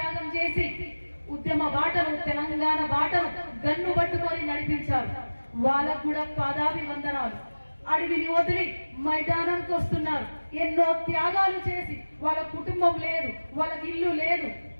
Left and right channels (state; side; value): inverted; both; correlation -1.00